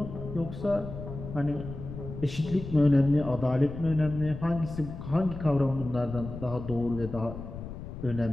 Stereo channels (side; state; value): left; noise; rumble, 10 dB below the sound